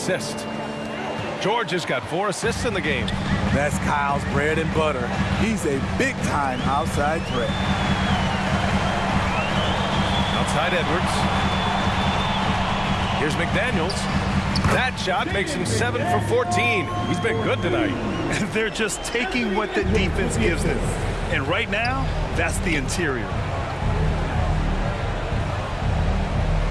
George has got 4 assists in the game. That's Kyle's bread and butter. He's a big-time outside threat. Outside Edwards. Here's McDaniels. That shot makes him 7 for 14. He's been good tonight. They're just taking what the defense gives them. And right now, that's the interior.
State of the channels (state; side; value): identical; both; correlation 1.00